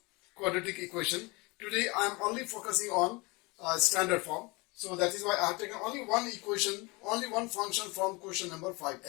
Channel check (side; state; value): right; quieter; 26.1 dB